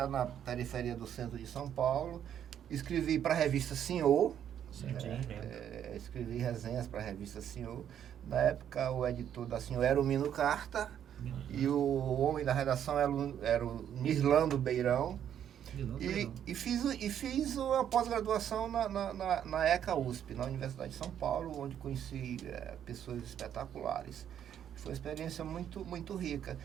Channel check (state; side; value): quieter; left; 9.6 dB